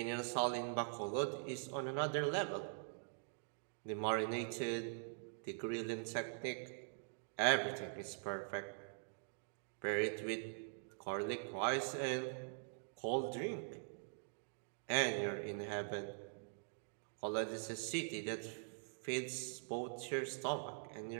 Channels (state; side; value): silent; left; digital silence